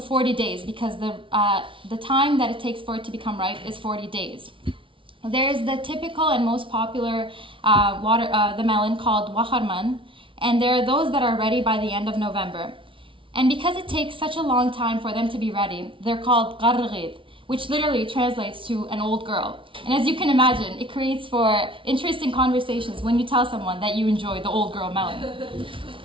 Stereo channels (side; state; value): left; late; 0.25 ms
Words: days because the time that it takes for it to become ripe is 40 days. There's the typical and most popular the melon called waharman, and there are those that are ready by the end of November. And because it takes such a long time for them to be ready, they're called qarrgid, which literally translates to an old girl. And as you can imagine, it creates for interesting conversations when you tell someone that you enjoy the old girl melon.